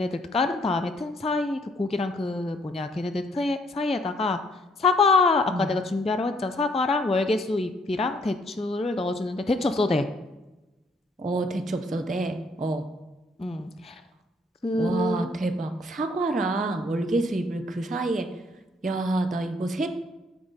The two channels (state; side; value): normal; both; correlation 0.66